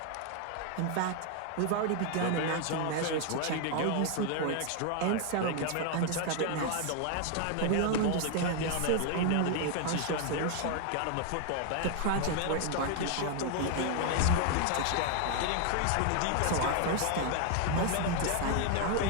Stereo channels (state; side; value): different; both; correlation 0.00